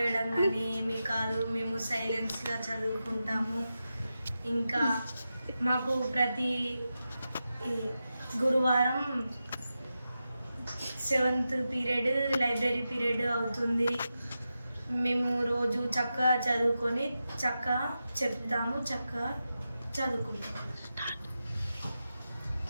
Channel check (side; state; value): both; inverted; correlation -0.91